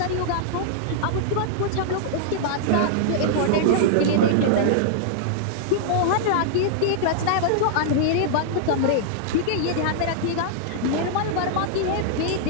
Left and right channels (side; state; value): both; different; correlation -0.02